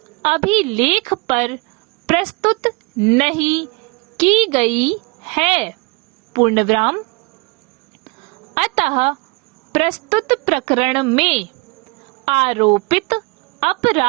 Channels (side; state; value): left; quieter; 27.2 dB